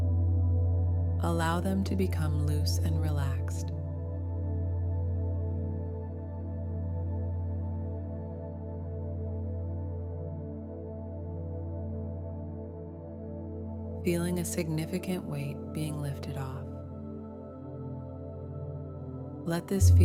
Allow them to become loose and relaxed. Feeling a significant weight being lifted off. Let this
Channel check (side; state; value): both; identical; correlation 1.00